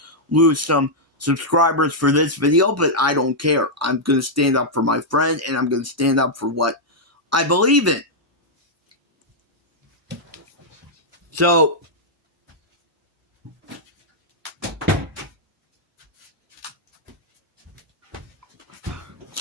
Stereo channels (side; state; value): both; normal; correlation -0.06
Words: lose some subscribers for this video, but I don't care. I'm going to stand up for my friend, and I'm going to stand up for what I believe in. So